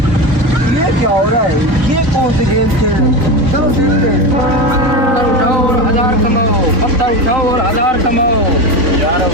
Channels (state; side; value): late; left; 3.9 ms